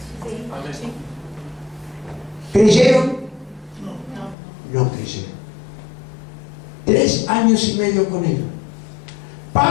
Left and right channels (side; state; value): right; drops out; at 4.4 s